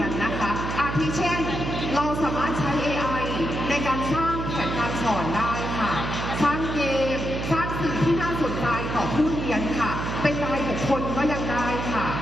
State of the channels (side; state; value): right; noise; hum, 4 dB below the sound